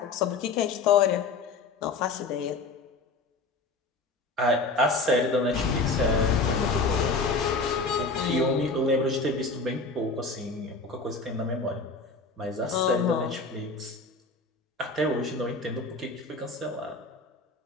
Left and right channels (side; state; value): right; quieter; 3.7 dB